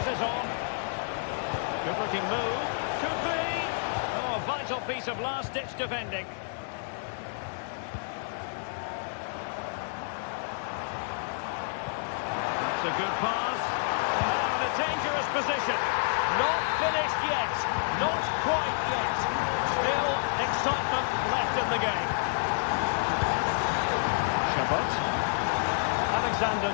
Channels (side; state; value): right; silent; 58 dB below the other